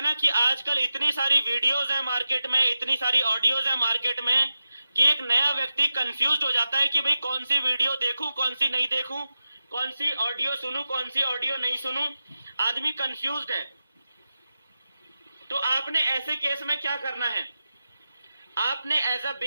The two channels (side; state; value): both; inverted; correlation -0.90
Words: ना कि आजकल इतनी सारी वीडियोज है मार्केट में, इतनी सारी ऑडियोज है मार्केट में कि एक नया व्यक्ति कंफ्यूज हो जाता है कि भाई कौन सी वीडियो देखूं, कौन सी नहीं देखूं, कौन सी ऑडियो सुनूं, कौन सी ऑडियो नहीं सुनूं। आदमी कंफ्यूज्ड है। तो आपने ऐसे केस में क्या करना है, आपने एज अ